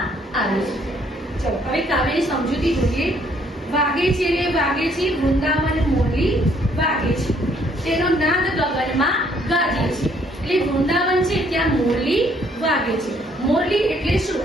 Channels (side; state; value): both; normal; correlation 0.66